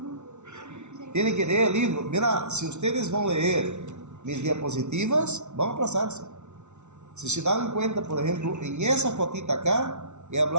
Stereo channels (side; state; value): left; late; 0.82 ms